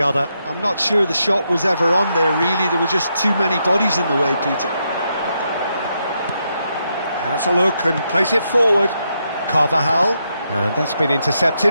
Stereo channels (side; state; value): both; inverted; correlation -0.81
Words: other. I'm not sure the shot was ever on there, really. There were just too many bodies in the way, Peter. Has a look and plays it forward. Carvajal, and that's been